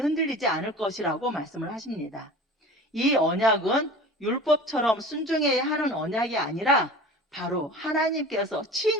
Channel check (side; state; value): both; normal; correlation 0.39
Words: 않을 것이라고 말씀을 하십니다. 이 언약은 율법처럼 순종해야 하는 언약이 아니라 바로 하나님께서